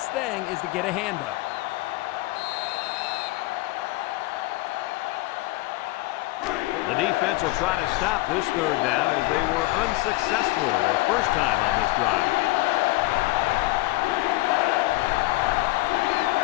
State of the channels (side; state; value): right; quieter; 19.9 dB